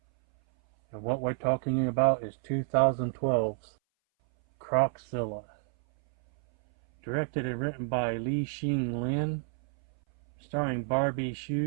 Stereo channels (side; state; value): left; silent; 58 dB below the other